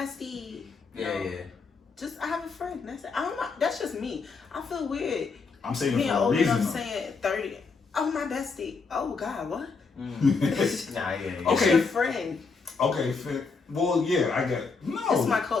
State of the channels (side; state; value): right; quieter; 4.7 dB